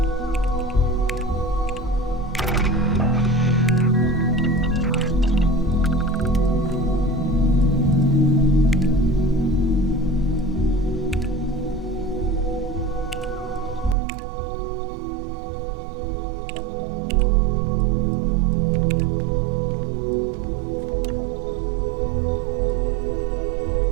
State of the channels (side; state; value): left; drops out; at 14.0 s